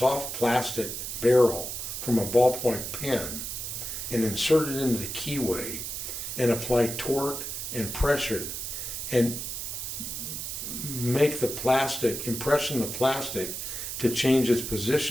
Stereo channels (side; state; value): right; noise; hiss, 5 dB below the sound